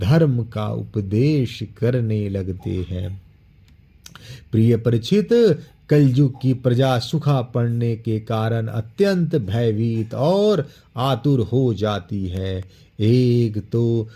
का उपदेश करने लगते हैं। प्रिय परीक्षित, कलयुग की प्रजा सूखा पड़ने के कारण अत्यंत भयभीत और आतुर हो जाती है। एक तो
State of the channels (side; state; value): both; identical; correlation 1.00